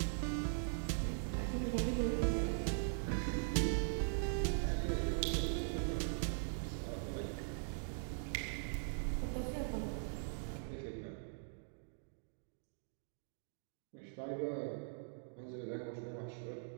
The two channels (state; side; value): silent; left; digital silence